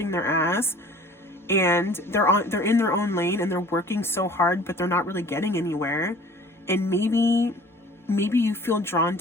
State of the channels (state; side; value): normal; both; correlation 0.48